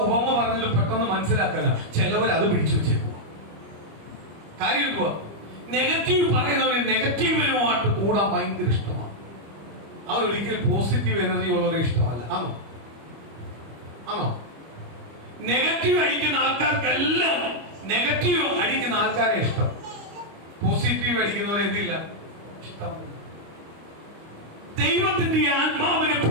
ഉപമ പറഞ്ഞത് പെട്ടെന്ന് മനസ്സിലാക്കാൻ ചിലവർ അത് പിടിച്ചു വെച്ചേക്കുക. കാര്യം എന്തുവാ? നെഗറ്റീവ് പറയുന്നവര് നെഗറ്റീവിനുമായിട്ട് കൂടാൻ ഭയങ്കര ഇഷ്ടമാണ്. അവരൊരിക്കലും പോസിറ്റീവ് എനർജി ഉള്ളവരെ ഇഷ്ടമല്ല. ആണോ? ആണോ? നെഗറ്റീവ് അടിക്കുന്ന ആൾക്കാർക്കെല്ലാം നെഗറ്റീവ് അടിക്കുന്ന ആൾക്കാരെ ഇഷ്ടം. പോസിറ്റീവ് അടിക്കുന്നവരെ എന്തില്ല, ഇഷ്ടമല്ല. ദൈവത്തിന്റെ ആത്മാവിനെ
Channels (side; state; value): left; late; 25 ms